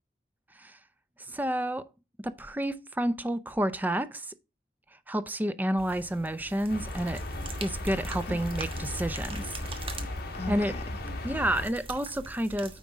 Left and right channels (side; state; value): both; normal; correlation 0.81